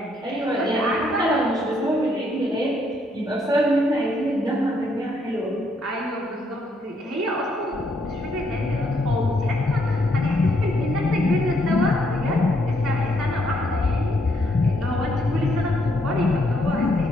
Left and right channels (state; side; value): normal; both; correlation 0.72